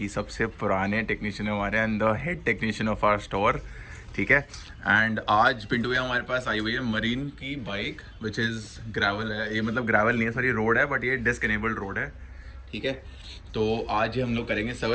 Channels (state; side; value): identical; both; correlation 1.00